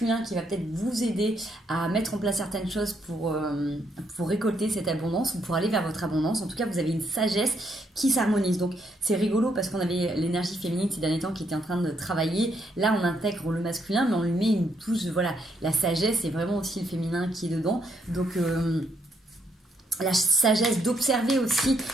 qui va peut-être vous aider à mettre en place certaines choses pour récolter cette abondance ou pour aller vers votre abondance. En tout cas, vous avez une sagesse qui s'harmonise. Donc c'est rigolo parce qu'on avait l'énergie féminine ces derniers temps qui était en train de travailler. Là, on intègre le masculin, mais on lui met une touche, voilà, la sagesse et vraiment aussi le féminin qui est dedans. Donc la sagesse d'observer aussi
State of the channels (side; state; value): both; normal; correlation 0.74